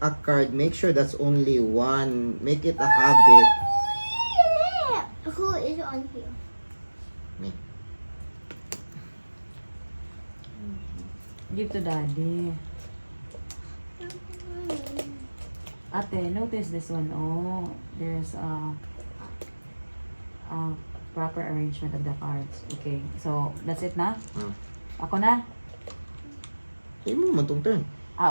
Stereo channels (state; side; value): inverted; both; correlation -1.00